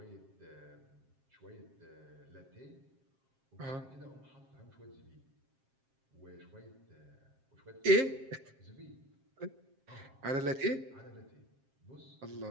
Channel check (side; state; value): left; late; 7.5 ms